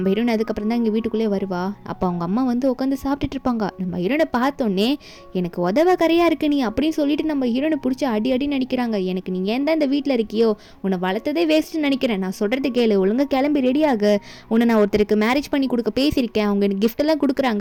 ஹீரோன் அதுக்கப்புறம் தான் இங்கே வீட்டுக்குள்ளே வருவா. அப்போ அவங்க அம்மா வந்து உட்காந்து சாப்பிட்டுட்டு இருப்பாங்க. நம்ம ஹீரோனை பார்த்தோன்னே எனக்கு உதவ கரையாக இருக்கு நீ அப்படின்னு சொல்லிட்டு நம்ம ஹீரோனை பிடிச்சி அடி நினைக்கிறாங்க. எனக்கு நீ ஏன் தான் இந்த வீட்டில் இருக்கியோ, உன்னை வளர்த்ததே வேஸ்ட்டுன்னு நினைக்கிறேன், நான் சொல்கிறது கேளு, ஒழுங்காக கிளம்பி ரெடியாகு, உன்னை நான் ஒருத்தருக்கு மேரேஜ் பண்ணி கொடுக்க பேசியிருக்கேன், அவங்க எனக்கு கிஃப்டெல்லாம்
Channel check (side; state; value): both; identical; correlation 1.00